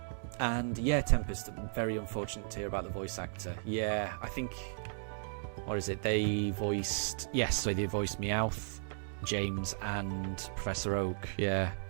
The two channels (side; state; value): left; silent; digital silence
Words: And yeah, Tempest, very unfortunate to hear about the voice actor. Yeah, I think, what is it? They voiced, yes, so they voiced Meowth, James, and Professor Oak. Yeah.